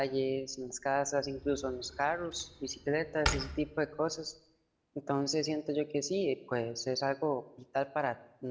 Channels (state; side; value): identical; both; correlation 1.00